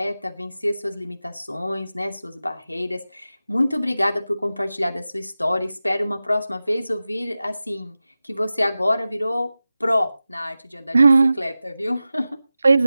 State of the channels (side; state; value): both; inverted; correlation -0.95